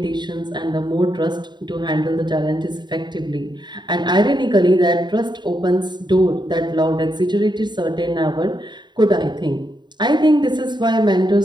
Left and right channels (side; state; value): left; late; 0.21 ms